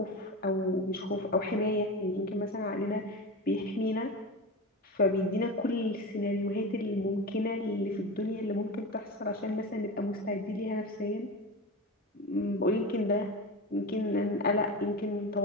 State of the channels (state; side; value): normal; both; correlation 0.24